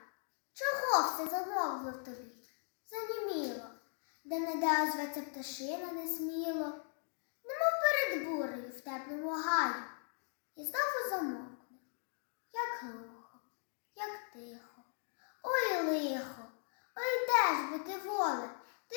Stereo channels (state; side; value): silent; right; 52 dB below the other